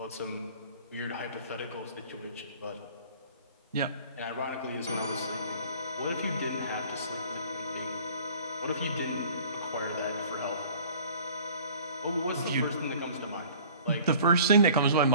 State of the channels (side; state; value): both; inverted; correlation -0.49